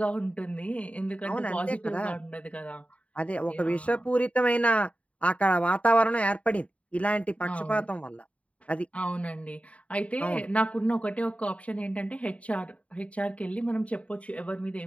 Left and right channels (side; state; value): right; late; 0.065 ms